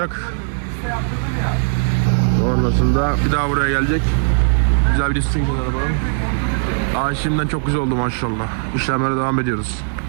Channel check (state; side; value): silent; left; digital silence